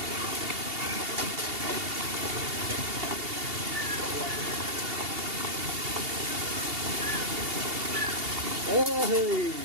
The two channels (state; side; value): late; left; 2.8 ms